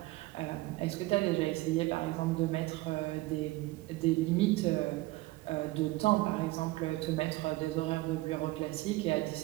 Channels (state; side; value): quieter; left; 19.6 dB